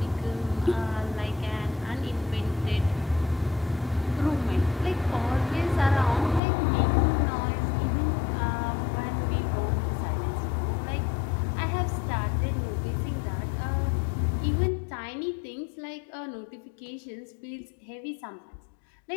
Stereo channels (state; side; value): drops out; right; at 6.4 s